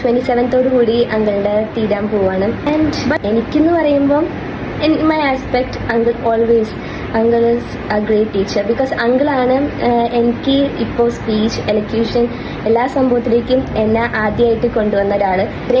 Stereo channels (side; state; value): both; identical; correlation 1.00